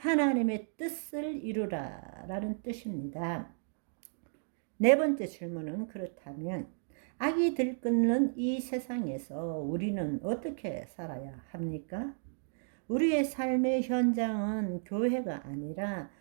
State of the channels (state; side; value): silent; left; digital silence